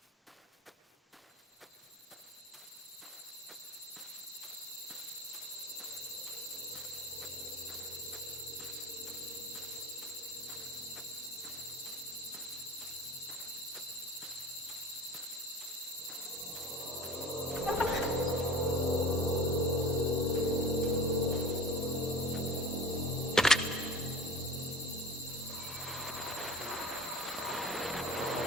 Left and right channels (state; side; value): normal; both; correlation 0.37